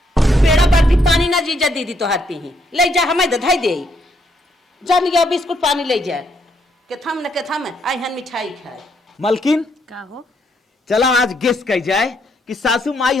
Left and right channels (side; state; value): both; normal; correlation 0.74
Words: पेड़ा बर्फी पानी ना जीजा दीदी तो हाथ पी ले जा हमें दधाई दे जन गया बिस्कुट पानी ले जा के थम आई हन मिठाई खाए। मलकिन का हो चला आज गेस कह जाए कि सासू माई